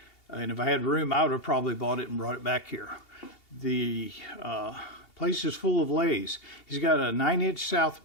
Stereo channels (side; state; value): right; late; 2.8 ms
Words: And if I had room, I would have probably bought it and brought it back here. The place is full of lathes. He's got a 9-inch south